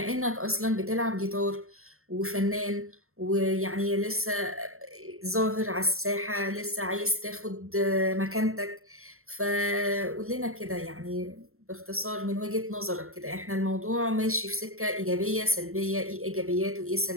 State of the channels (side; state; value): left; late; 0.62 ms